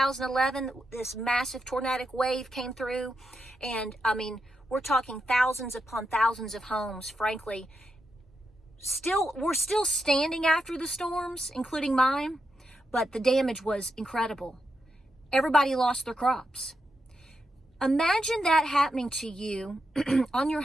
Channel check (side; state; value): both; normal; correlation 0.84